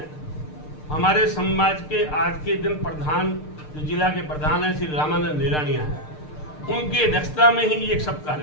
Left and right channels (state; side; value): late; right; 6.6 ms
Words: हमारे समाज के आज के दिन प्रधान, जो जिला के प्रधान हैं श्री रामानंद निरानिया हैं, उनकी अध्यक्षता में ही ये सब